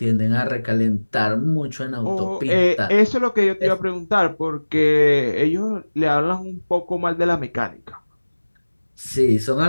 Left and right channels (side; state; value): both; inverted; correlation -1.00